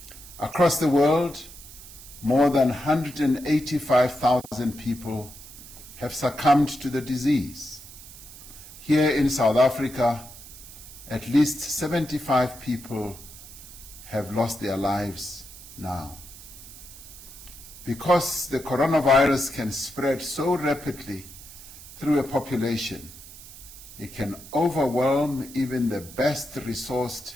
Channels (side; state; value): right; noise; hiss, 17 dB below the sound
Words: Across the world, more than 185,000 people have succumbed to the disease. Here in South Africa, at least 75 people have lost their lives now. Because the coronavirus can spread so rapidly through a population, it can overwhelm even the best resourced